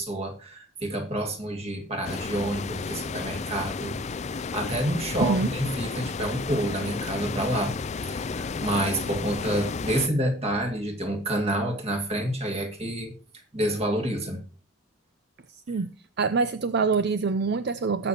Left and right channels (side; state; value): both; normal; correlation 0.42